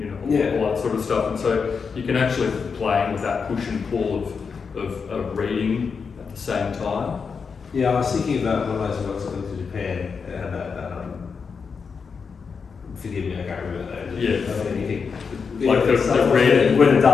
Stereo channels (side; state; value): right; quieter; 5.6 dB